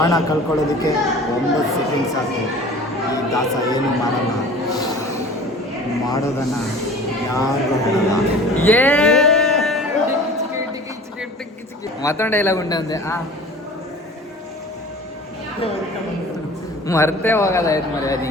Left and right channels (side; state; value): both; normal; correlation 0.43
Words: ಕಳ್ಕೊಳ್ಳೋದಕ್ಕೆ 9 ಸೆಕೆಂಡ್ ಸಾಕು. ಈ ದಾಸ ಏನು ಮಾಡಲ್ಲ, ಮಾಡೋದನ್ನ ಯಾರು ಹೇಳಲ್ಲ. ಮತ್ತೊಂದು ಡೈಲಾಗ್ ಉಂಟು ಅಂದೆ. ಮರ್ತೇ ಹೋಗೋದಾಯ್ತು ಮರಿ ಅದು